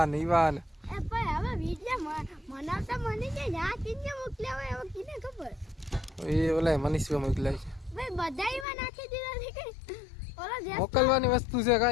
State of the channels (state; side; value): drops out; right; at 8.7 s